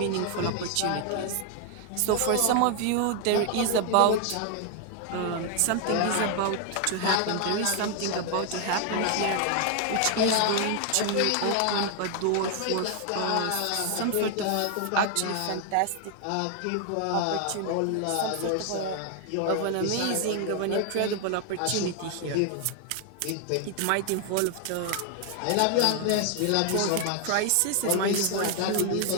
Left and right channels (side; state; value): both; different; correlation 0.00